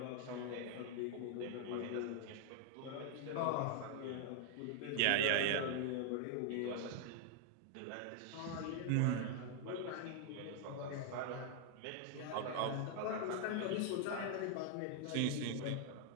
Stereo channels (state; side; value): different; both; correlation 0.00